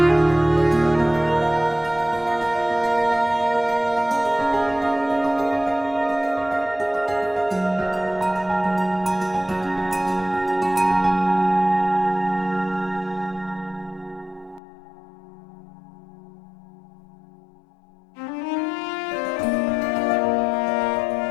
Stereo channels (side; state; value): right; drops out; at 14.6 s